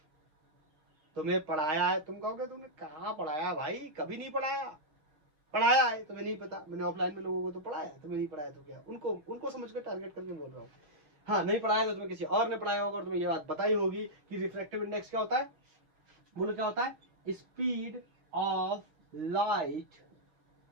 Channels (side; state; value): left; late; 6.7 ms